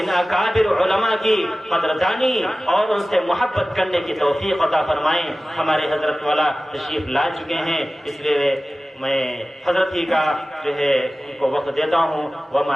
اکابر علماء کی قدردانی اور ان سے محبت کرنے کی توفیق عطا فرمائیں۔ ہمارے حضرت والا تشریف لا چکے ہیں، اس لیے میں حضرت ہی کا جو ہے ان کو وقت دیتا ہوں۔ وما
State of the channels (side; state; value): both; normal; correlation 0.96